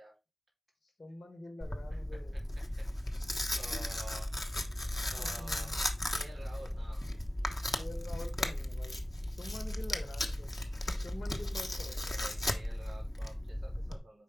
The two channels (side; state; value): both; normal; correlation 0.95